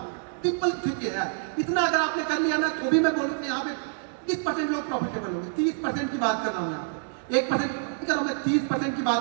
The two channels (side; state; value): left; silent; digital silence